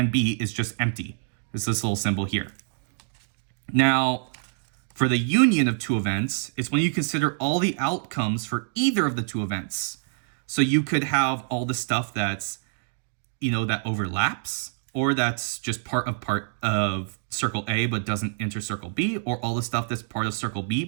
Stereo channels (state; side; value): silent; left; digital silence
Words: B is just empty. It's this little symbol here. Now, for the union of two events, it's when you consider all the outcomes for either of the two events. So you could have all the stuff that's, that overlaps, or that's just part of circle A but doesn't enter circle B, or all the stuff that's part of circle B